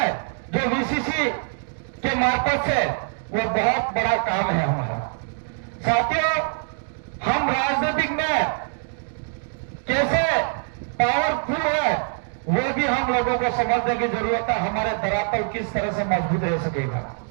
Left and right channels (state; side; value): silent; left; 60 dB below the other